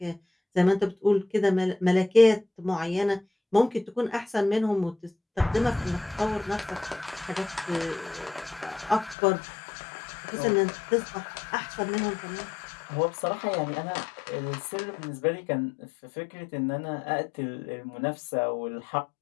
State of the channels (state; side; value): drops out; right; at 9.2 s